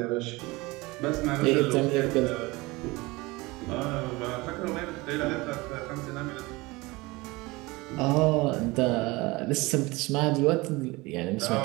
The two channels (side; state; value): left; quieter; 22.8 dB